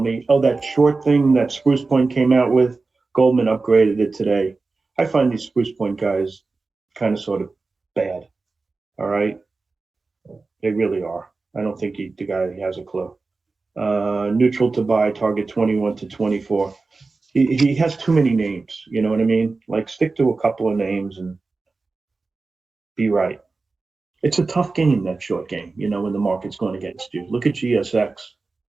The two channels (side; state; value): left; quieter; 3.9 dB